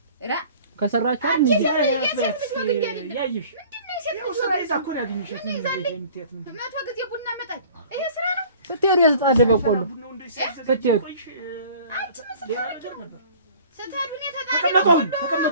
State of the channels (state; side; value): inverted; both; correlation -0.48